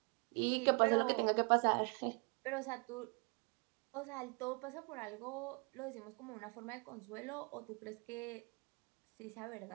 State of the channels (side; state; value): left; quieter; 33.4 dB